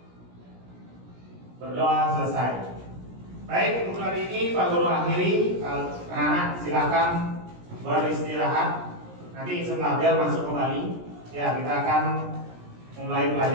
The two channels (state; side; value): late; left; 17 ms